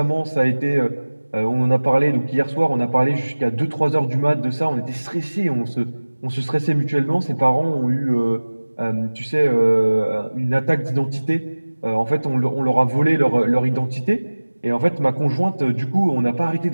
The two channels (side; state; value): both; inverted; correlation -1.00